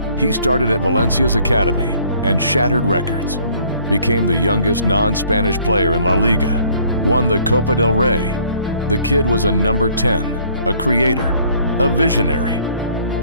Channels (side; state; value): both; inverted; correlation -0.60